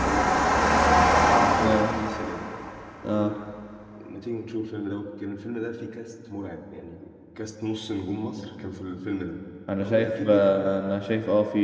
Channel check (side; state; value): both; identical; correlation 1.00